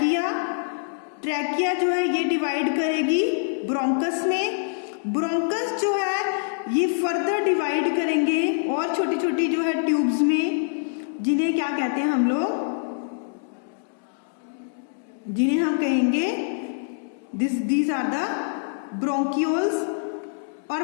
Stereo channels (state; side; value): silent; right; digital silence